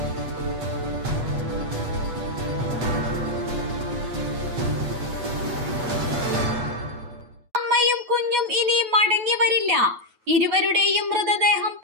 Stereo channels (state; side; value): late; left; 8.3 ms